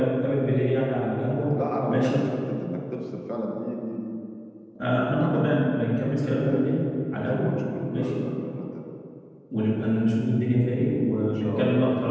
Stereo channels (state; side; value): identical; both; correlation 1.00